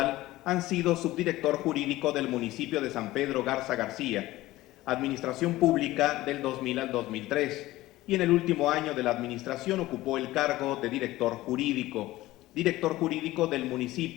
han sido subdirector jurídico del municipio de San Pedro Garza García, Administración Pública del 2000 al 2003, y en el último año de la administración ocupó el cargo de director jurídico del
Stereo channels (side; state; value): right; quieter; 17.2 dB